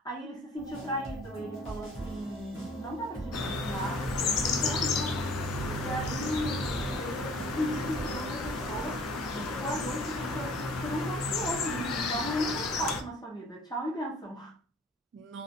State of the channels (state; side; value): normal; both; correlation 0.52